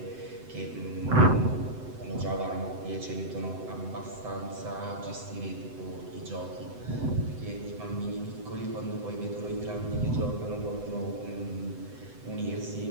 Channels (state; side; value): late; left; 7.9 ms